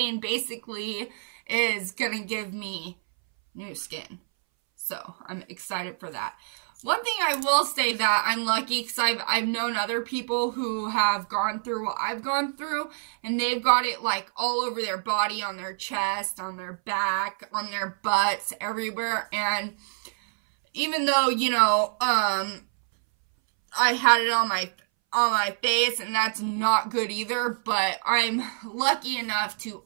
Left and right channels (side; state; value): left; silent; 60 dB below the other